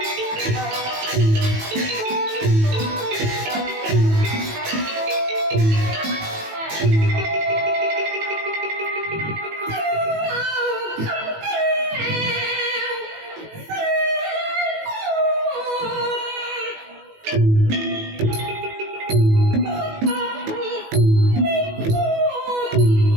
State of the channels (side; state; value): left; late; 18 ms